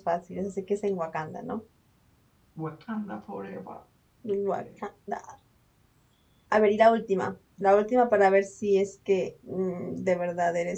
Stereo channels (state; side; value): identical; both; correlation 1.00